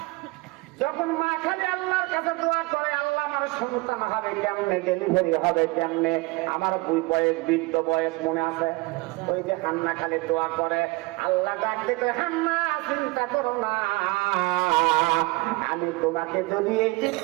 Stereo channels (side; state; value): left; quieter; 23.3 dB